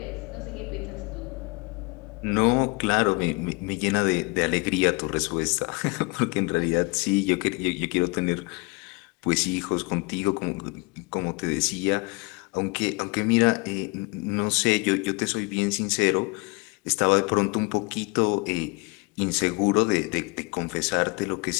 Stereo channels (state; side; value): quieter; right; 28.1 dB